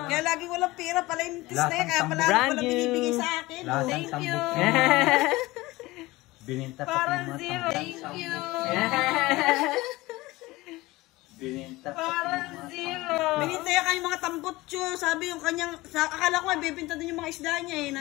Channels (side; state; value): right; quieter; 20.0 dB